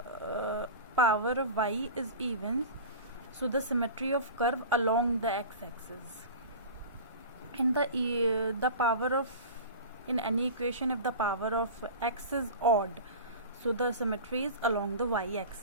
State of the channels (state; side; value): inverted; both; correlation -0.33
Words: power of y is even, so the symmetry of curve along the x-axis. In the power of, in any equation, if the power of x is odd, so the symmetry is along the